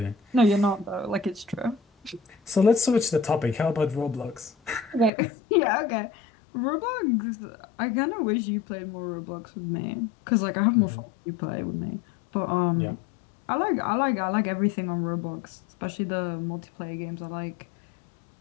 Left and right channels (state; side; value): drops out; right; at 5.1 s